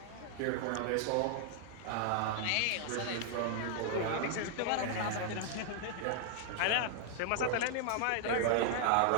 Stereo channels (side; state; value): both; different; correlation -0.01